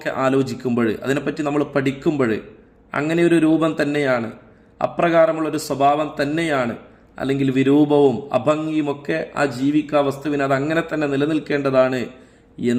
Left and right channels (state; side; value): identical; both; correlation 1.00